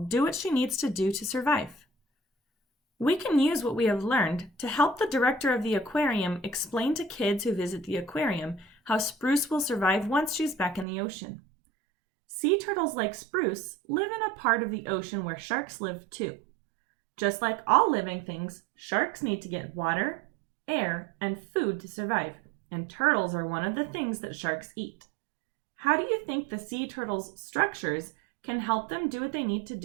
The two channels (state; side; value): drops out; left; at 10.9 s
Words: do what she needs to do to survive? We can use what we have learned to help the director of the aquarium explain to kids who visit the aquarium how Spruce will survive once she's back in the ocean. Sea turtles like Spruce live in a part of the ocean where sharks live too. Just like all living things, sharks need to get water, air, and food to survive, and turtles are one of the things that sharks eat. How do you think the sea turtles' structures can help them do what they need to